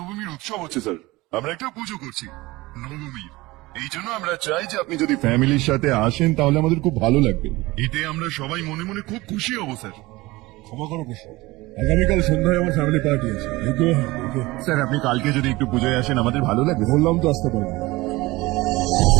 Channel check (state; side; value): quieter; left; 20.6 dB